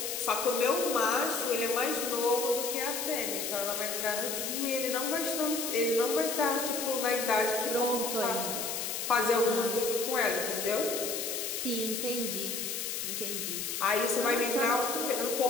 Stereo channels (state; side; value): noise; left; hiss, 3 dB below the sound